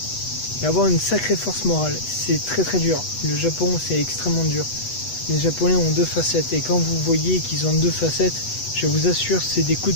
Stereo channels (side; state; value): right; late; 8.1 ms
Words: et avoir une sacrée force morale. C'est très très dur. Le Japon, c'est extrêmement dur. Les Japonais ont deux facettes. Et quand vous voyez qu'ils ont deux facettes, je vous assure, c'est des coups